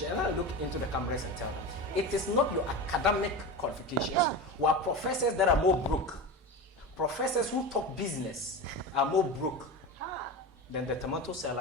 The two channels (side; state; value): both; normal; correlation 0.25